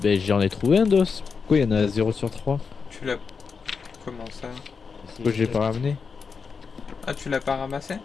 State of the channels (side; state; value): right; quieter; 5.4 dB